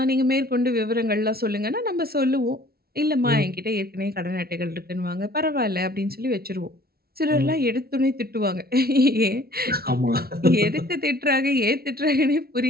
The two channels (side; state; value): left; late; 0.44 ms